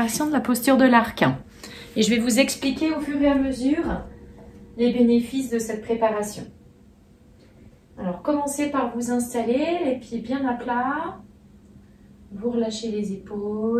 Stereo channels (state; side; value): identical; both; correlation 1.00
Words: de la posture de l'arc. Et je vais vous expliquer au fur et à mesure les bénéfices de cette préparation. Alors commencez par vous installer, les pieds bien à plat. Vous relâchez les